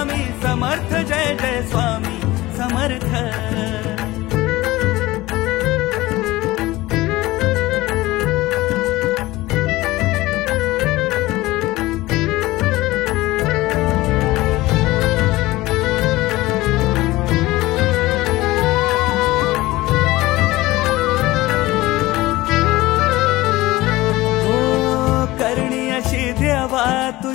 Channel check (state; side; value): quieter; right; 18.7 dB